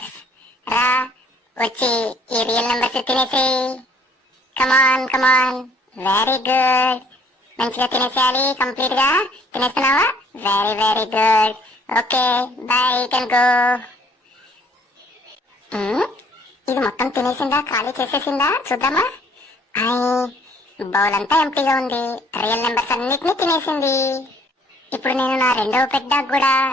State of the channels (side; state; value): both; normal; correlation 0.60